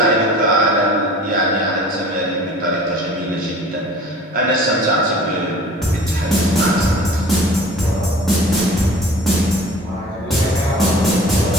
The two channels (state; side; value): normal; both; correlation 0.45